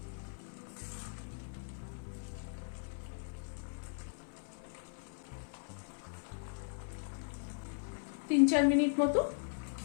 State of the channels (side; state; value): right; silent; 52 dB below the other